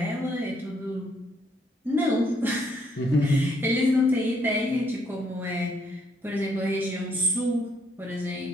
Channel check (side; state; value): both; normal; correlation 0.70